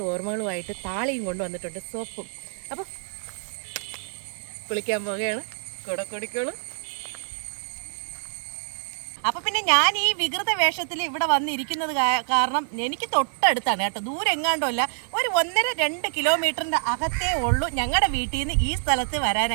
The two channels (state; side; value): silent; left; 58 dB below the other